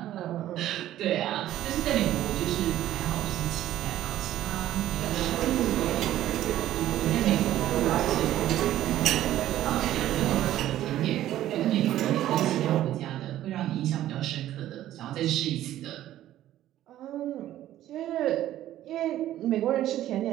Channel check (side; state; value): left; quieter; 13.2 dB